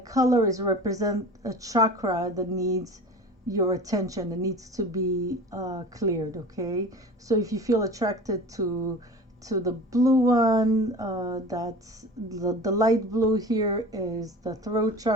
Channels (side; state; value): both; normal; correlation 0.37